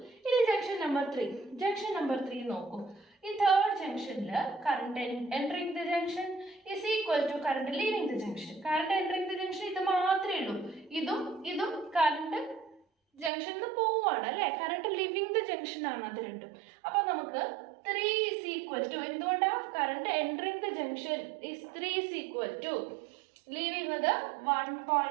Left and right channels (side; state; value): left; drops out; at 13.3 s